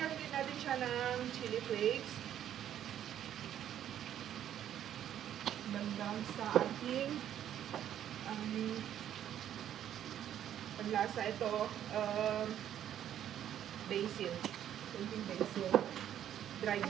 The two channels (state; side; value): quieter; left; 10.6 dB